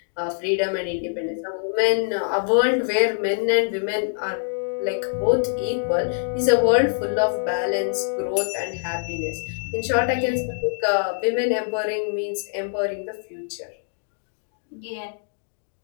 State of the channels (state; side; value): silent; right; digital silence